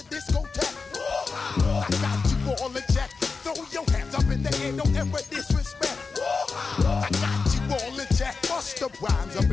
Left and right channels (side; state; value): right; quieter; 4.6 dB